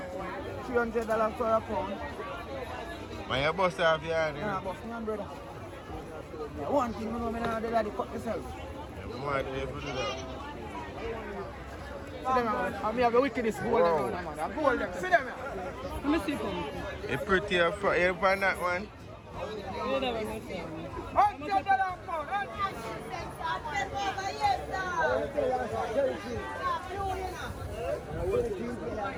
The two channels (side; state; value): both; identical; correlation 1.00